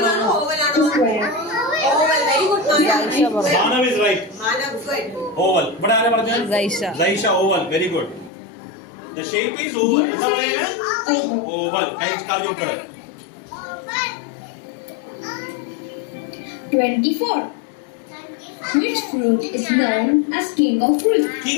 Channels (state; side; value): drops out; right; at 8.3 s